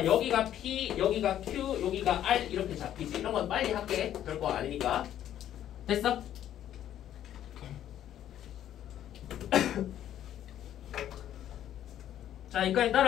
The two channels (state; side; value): quieter; right; 11.3 dB